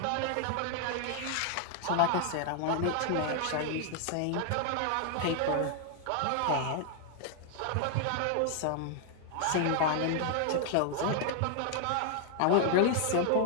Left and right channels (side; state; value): both; different; correlation 0.00